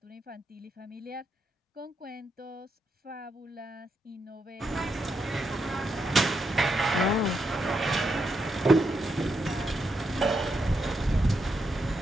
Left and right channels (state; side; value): normal; both; correlation 0.81